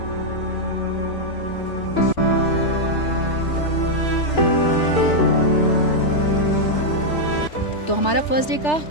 तो हमारा फर्स्ट डे का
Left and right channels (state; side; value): late; right; 3.3 ms